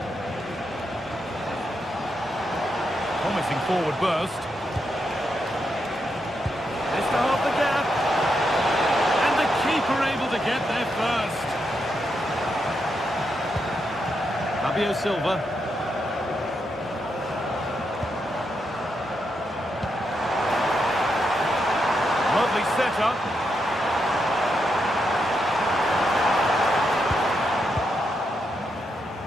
promising forward burst. Just to half the gap. And the keeper able to get there first. Fabio Silva. Lovely setup.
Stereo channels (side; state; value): both; normal; correlation 0.82